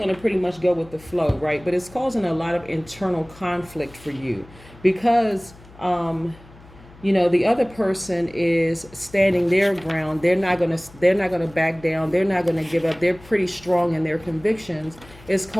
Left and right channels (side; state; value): left; noise; hum, 22 dB below the sound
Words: to pretty much go with the flow, right? But it's causing a lot of internal conflict for you because you know, the other person is standing their ground. They're not gonna back down. They're not gonna give up. They're pretty strong in their convictions. It's